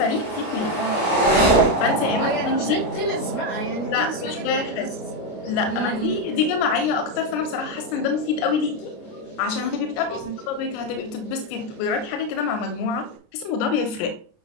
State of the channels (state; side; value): late; right; 29 ms